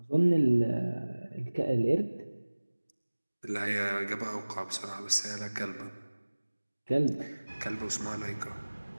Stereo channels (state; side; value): inverted; both; correlation -1.00